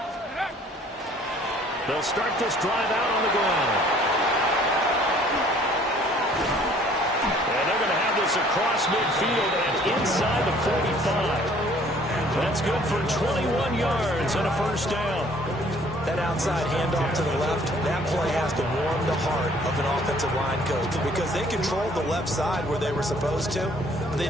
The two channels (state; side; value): normal; both; correlation 0.57